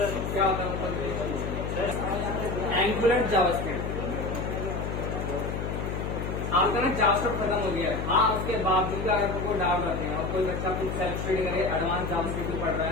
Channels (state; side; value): noise; left; hum, 4 dB below the sound